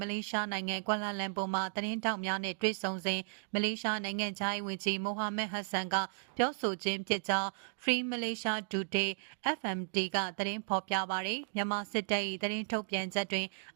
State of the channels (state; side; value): silent; left; digital silence